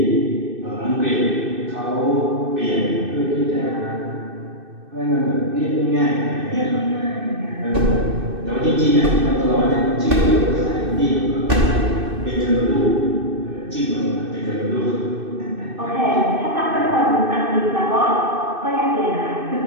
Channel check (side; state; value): left; late; 2.6 ms